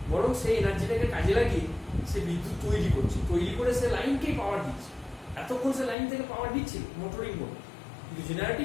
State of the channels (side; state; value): right; drops out; at 6.0 s